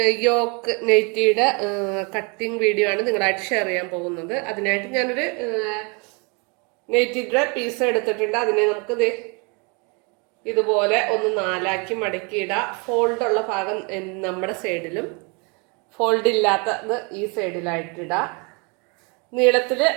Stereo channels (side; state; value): left; quieter; 31.9 dB